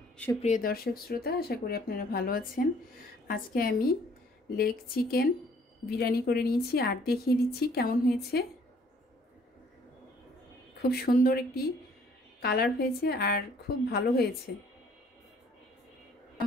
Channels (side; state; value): both; normal; correlation 0.60